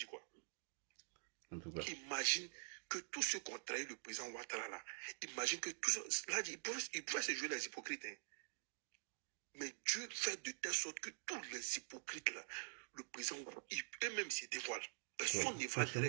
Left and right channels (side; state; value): left; silent; digital silence